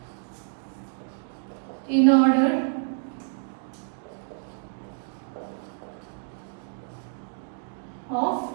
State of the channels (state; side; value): silent; left; digital silence